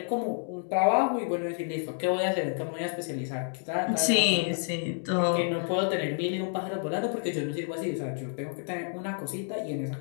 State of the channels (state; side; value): silent; right; 58 dB below the other